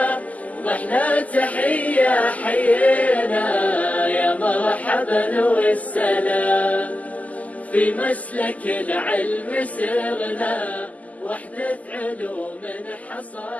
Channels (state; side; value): late; right; 0.075 ms